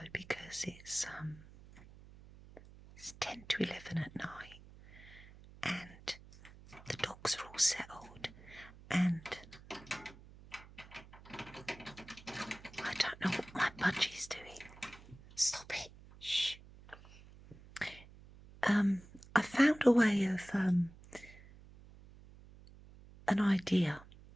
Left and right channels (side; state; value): right; noise; hum, 20 dB below the sound